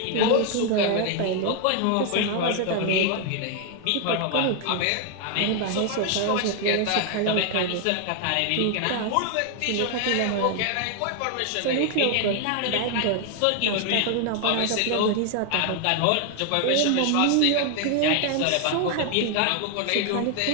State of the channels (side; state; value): both; different; correlation 0.00